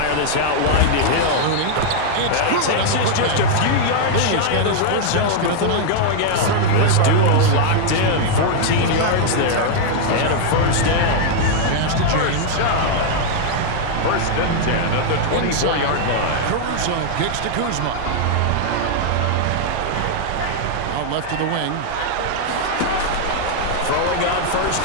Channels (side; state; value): both; different; correlation 0.00